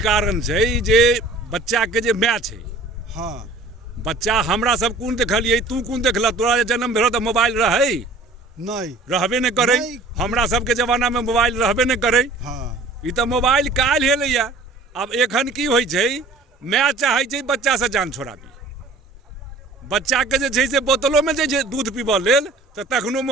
कारण छै जे बच्चा के जे माय छै। हाँ बच्चा हमरा सब कोन देखलियै, तू कोन देखल? तोरा जे जन्म भेलो तऽ मोबाइल रहै? नहीं, रहबे नहीं करे। हमरा सबके जमाना में मोबाइल रहबे नहीं करे। हाँ ई तऽ मोबाइल काल्हि एलैया। अब एखन की होइ छै, माय चाहै छै बच्चा से जान छोड़ाबी। बच्चा के जे छै से बोतलों में जे छै दूध पीबऽ लेल तऽ तखनो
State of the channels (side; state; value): left; quieter; 3.1 dB